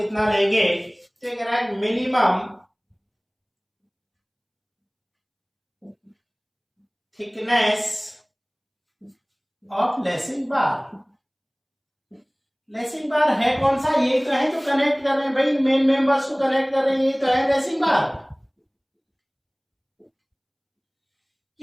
लेंगे, तो ये कह रहा है minimum thickness of lacing bar. Lacing bar है कौन सा, ये तो है जो कनेक्ट कर रहे हैं भाई, मेन मेंबर्स को कनेक्ट कर रहे हैं, ये तो है लेसिंग बार।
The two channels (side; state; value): both; identical; correlation 1.00